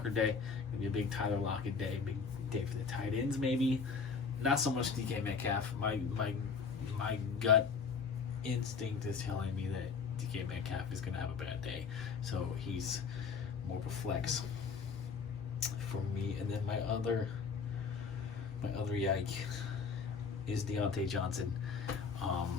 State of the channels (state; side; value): quieter; right; 5.5 dB